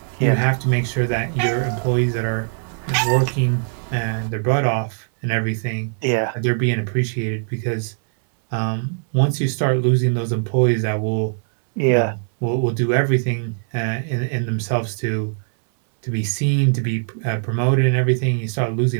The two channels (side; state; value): left; silent; digital silence